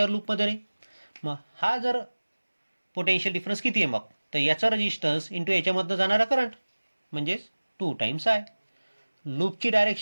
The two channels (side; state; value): both; inverted; correlation -1.00